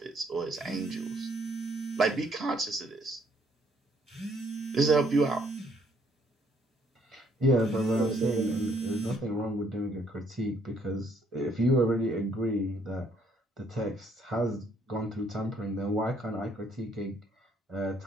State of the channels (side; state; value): both; normal; correlation 0.67